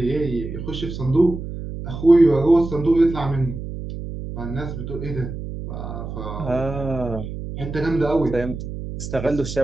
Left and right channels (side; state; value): right; noise; hum, 8 dB below the sound